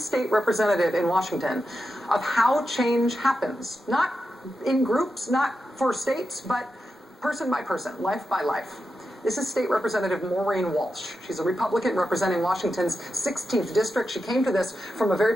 representative in Washington of how change happens, not in groups, not for states, but person by person, life by life. This is State Representative Maureen Walsh. She's a Republican representing Washington's 16th district. She came to this from a very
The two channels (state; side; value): normal; both; correlation 0.89